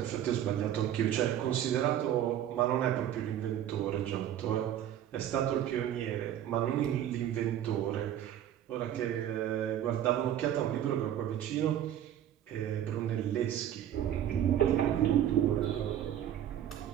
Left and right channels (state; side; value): quieter; left; 11.0 dB